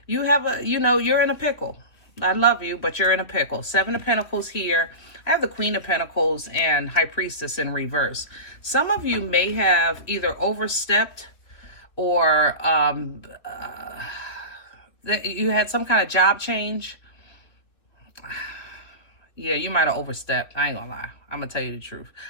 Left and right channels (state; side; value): late; right; 3.1 ms